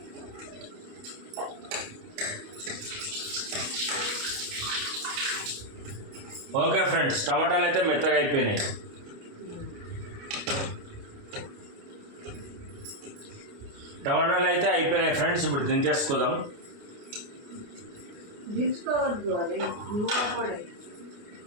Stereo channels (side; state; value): left; late; 29 ms